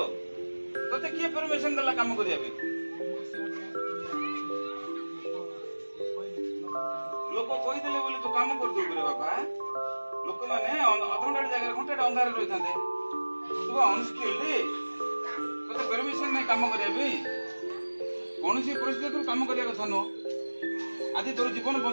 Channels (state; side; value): inverted; both; correlation -1.00